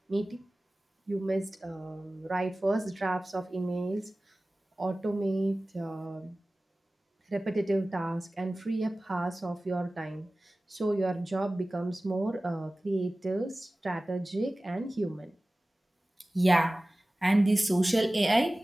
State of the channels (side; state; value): both; normal; correlation 0.97